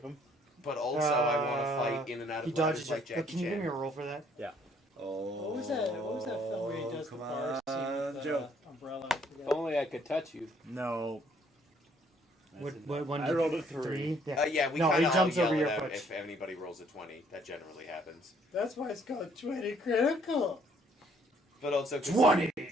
him. But also, I want to fight in and out he of ladders dodges like it. Jackie Can you give me a Chan. roll for that? Oh, What was that? What was that film where he does the come bar scene on, with Joe. the umbrella? If only I could touch you. No. What one? I rolled a 3. Yeah. Yeah, we No, kind he of jumps yell over it your out foot. if anybody rolls a 20. That generally happens. That's why it's called 20Critical. But also, 20!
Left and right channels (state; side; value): normal; both; correlation 0.64